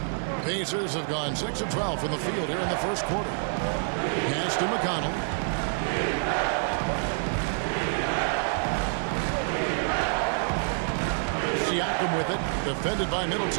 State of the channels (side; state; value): left; silent; 60 dB below the other